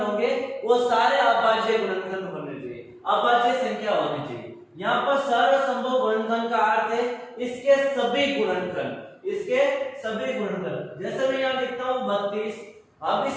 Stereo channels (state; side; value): identical; both; correlation 1.00